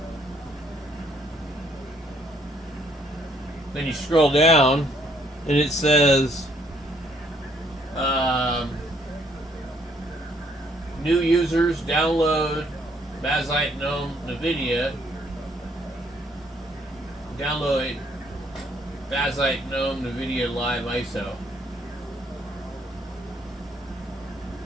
Then you scroll down, and it says new users download bazzite gnome NVIDIA. Download bazzite gnome NVIDIA Live ISO.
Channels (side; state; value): both; normal; correlation 0.67